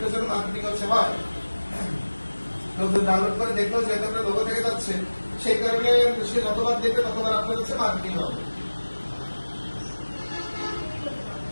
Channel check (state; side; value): inverted; both; correlation -1.00